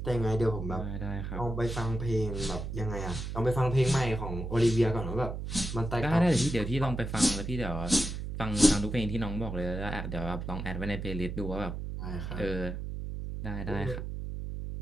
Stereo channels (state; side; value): noise; right; hum, 5 dB below the sound